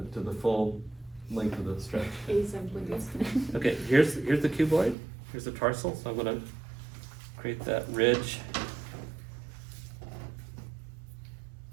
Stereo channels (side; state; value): left; drops out; at 5.0 s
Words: to the full length of the stretch. Okay, here's the cuboid, here's the tarsal, so I'm gonna create that ridge.